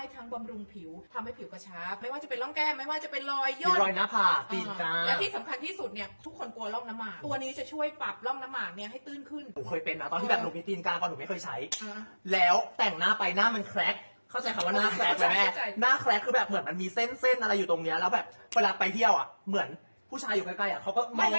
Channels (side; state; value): both; inverted; correlation -1.00